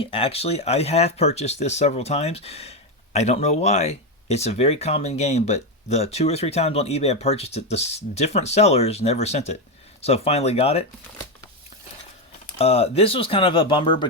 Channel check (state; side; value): normal; both; correlation 0.09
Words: Actually, I have purchased this several times. I don't know why. It's a very common game, but the 2 or 3 times on eBay I purchased it, the different sellers never sent it. So finally got it. This was kind of a bummer